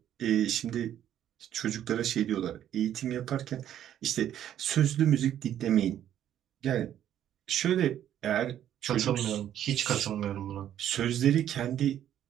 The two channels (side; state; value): left; quieter; 10.9 dB